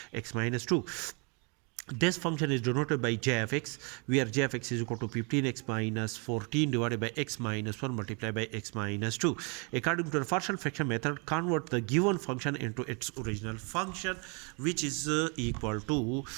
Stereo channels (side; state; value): left; quieter; 33.9 dB